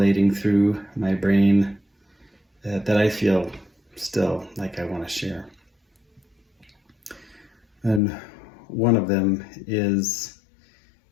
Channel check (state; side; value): drops out; right; at 8.0 s